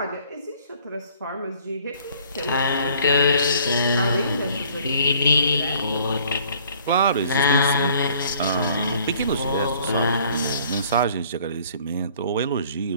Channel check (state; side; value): inverted; both; correlation -0.57